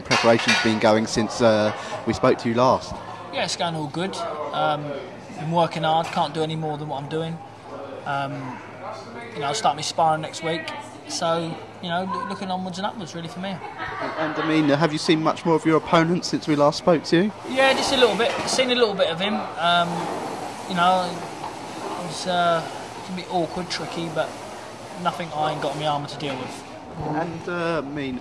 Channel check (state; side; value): identical; both; correlation 1.00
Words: preparations been going since we spoke to you last? Yeah, it's going all good. Been working hard, can't do any more than what I'm doing. I'll start my sparring next week. So, looking onwards and upwards really for me. And I mean, have you seen much more of your opponent since we last spoke to you? Yeah, just a little bit. Seen a little bit of him. It's can be awkward, tricky, but nothing I ain't got in my armour to deal with. And